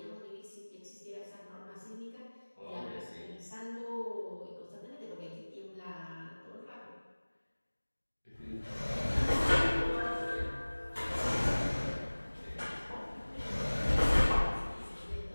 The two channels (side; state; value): both; inverted; correlation -1.00